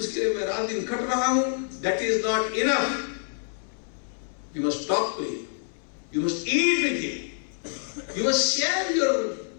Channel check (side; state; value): right; silent; 60 dB below the other